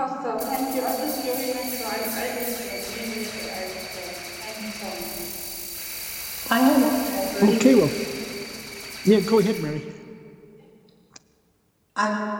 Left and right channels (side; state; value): both; identical; correlation 1.00